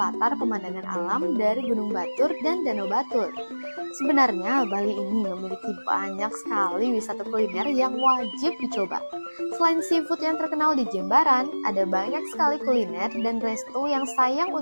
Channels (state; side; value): inverted; both; correlation -1.00